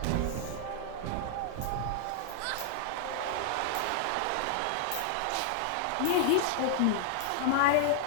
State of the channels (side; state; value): both; different; correlation 0.00